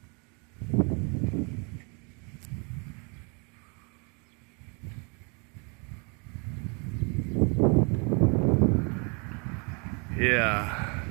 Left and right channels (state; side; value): quieter; left; 34.5 dB